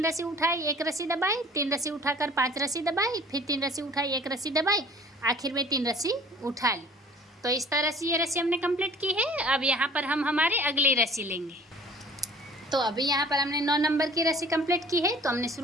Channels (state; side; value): normal; both; correlation 0.49